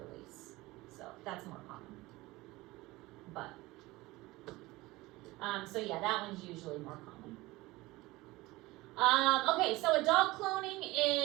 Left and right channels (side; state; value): left; quieter; 20.2 dB